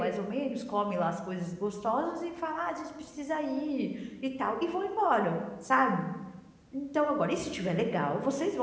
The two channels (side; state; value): both; identical; correlation 1.00